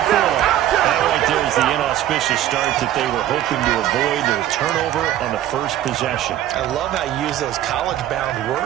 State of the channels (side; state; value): left; quieter; 12.6 dB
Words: That right there is the inauspicious start that they were hoping to avoid, the turnover on the 1st possession. I love how you use those college-bound